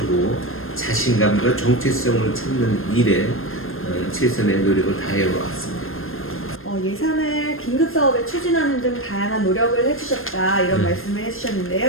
자신감과 정체성을 찾는 일에 최선의 노력을 다해 왔습니다. 예산을 긴급 사업에 추진하는 등 다양한 노력을 해주셨다 이런 말씀을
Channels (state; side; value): late; right; 0.60 ms